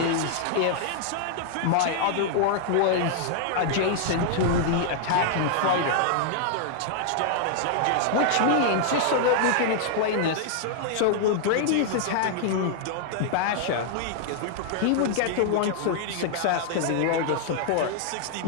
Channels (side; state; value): both; different; correlation -0.01